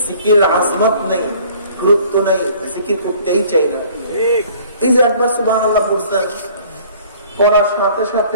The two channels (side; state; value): both; inverted; correlation -0.53